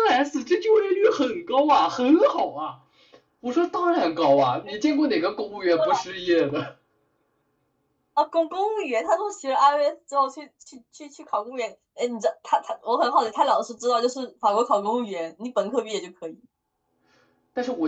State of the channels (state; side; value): identical; both; correlation 1.00